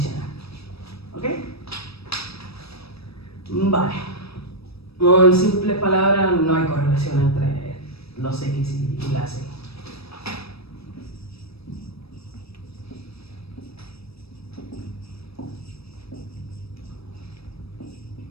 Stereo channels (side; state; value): right; late; 0.78 ms